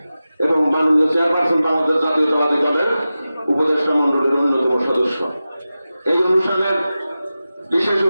এবং মাননীয় চেয়ারপারসন বাংলাদেশ জাতীয়তাবাদী দলের উপদেষ্টা মন্ডলের অন্যতম সদস্য। এই অনুষ্ঠানের বিশেষ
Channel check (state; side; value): inverted; both; correlation -0.94